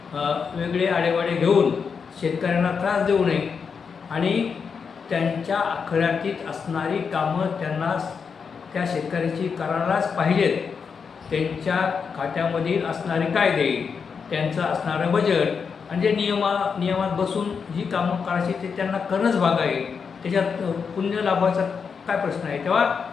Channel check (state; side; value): quieter; right; 5.9 dB